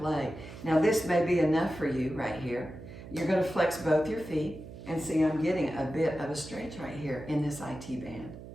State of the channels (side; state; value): right; noise; hum, 14 dB below the sound